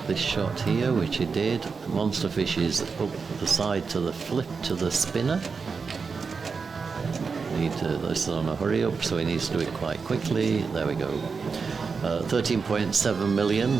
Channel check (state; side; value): quieter; left; 5.1 dB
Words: this shot here, which he did. Monster fish is up the side to the flip to the spinner. This is on a hurry up, so he needs to do it quite quickly. There we go. 13.7 million